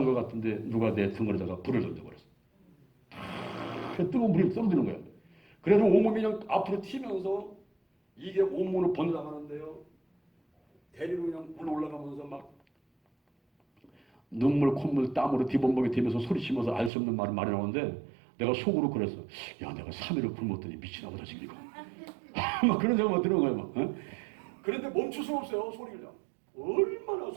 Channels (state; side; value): drops out; left; at 16.9 s